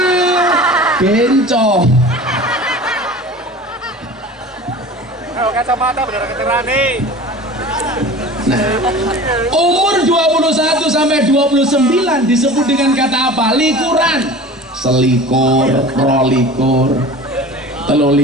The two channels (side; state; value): both; normal; correlation 0.39